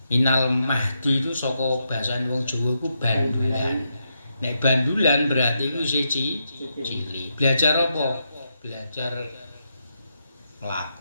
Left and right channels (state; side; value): inverted; both; correlation -0.82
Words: Minal mahdi itu saka basa wong Jawa iku bandulan. Nek bandulan berarti iku isih cilik. Belajar apa? Belajar